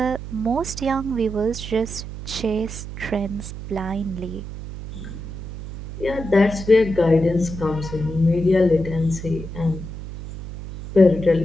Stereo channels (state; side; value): noise; right; hum, 10 dB below the sound